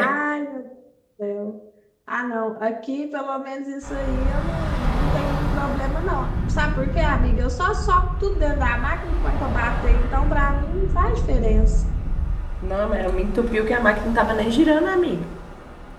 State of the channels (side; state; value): both; identical; correlation 1.00